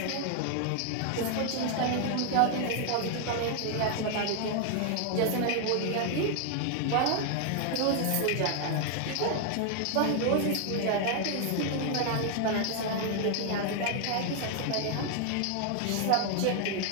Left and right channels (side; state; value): both; different; correlation 0.00